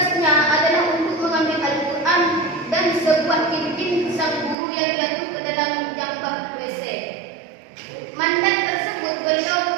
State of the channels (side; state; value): left; drops out; at 4.5 s